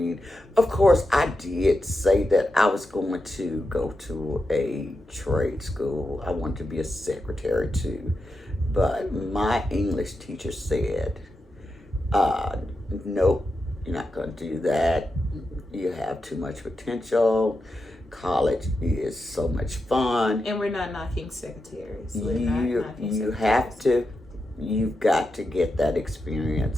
Of course, I did say that I was going to go to a trade school. I wanted to be a secretary too. But my English teacher said, nope, you're not going to do that. You have too much potential. College is so much fun. And we're not knocking secretaries. You've got to get that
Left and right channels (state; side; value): normal; both; correlation 0.88